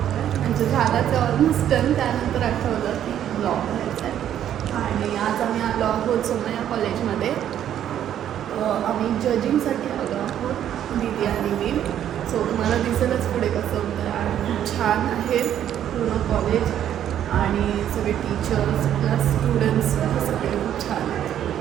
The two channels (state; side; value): quieter; left; 10.5 dB